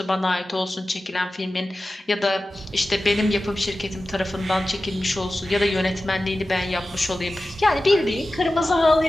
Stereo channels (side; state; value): both; normal; correlation 0.95